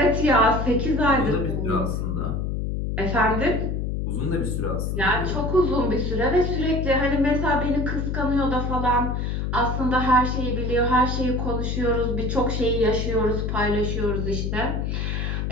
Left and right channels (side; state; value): left; noise; hum, 1 dB below the sound